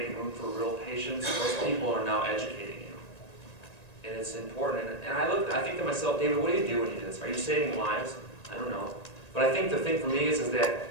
room for real patients, those people are now educating you. And it's important. And I think to myself, David, what do you do when you do this? Are you saving lives? I don't know. But I think the thing for me is that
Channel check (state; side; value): late; right; 1.9 ms